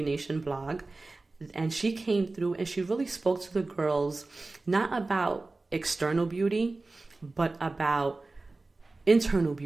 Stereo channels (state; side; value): quieter; left; 3.3 dB